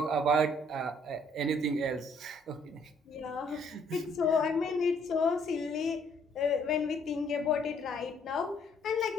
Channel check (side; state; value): both; normal; correlation 0.65